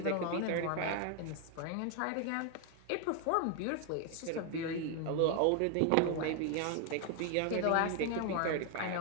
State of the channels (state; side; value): different; both; correlation 0.00